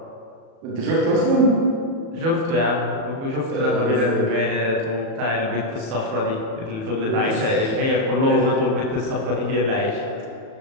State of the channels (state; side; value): late; left; 36 ms